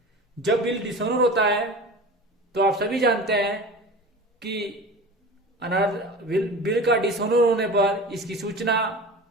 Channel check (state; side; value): normal; both; correlation 0.35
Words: जब बिल डिसऑनर होता है तो आप सभी जानते हैं कि बिल का डिसऑनर होने पर इसकी सूचना